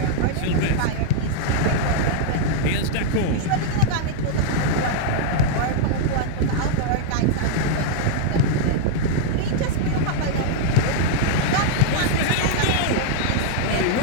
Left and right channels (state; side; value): different; both; correlation -0.01